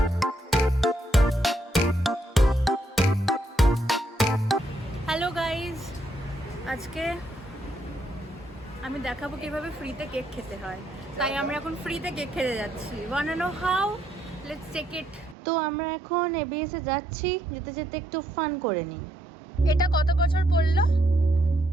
আজকে আমি দেখাবো কিভাবে ফ্রিতে কেক খেতে হয়। তাই আমরা এখন ফ্রিতে কেক খেতে যাচ্ছি। Want to know how? Let's take it. তো আমরা এখন এবিএস এ যাচ্ছি, যেতে যেতে একটু ফান করে নিই। এটা কত বছর পড়লো?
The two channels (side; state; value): both; normal; correlation 0.75